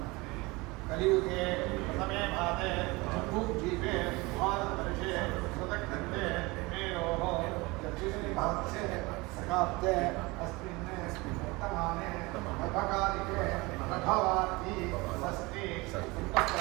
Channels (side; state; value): left; quieter; 23.8 dB